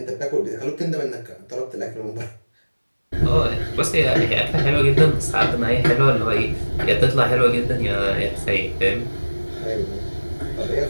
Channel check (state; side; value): inverted; both; correlation -1.00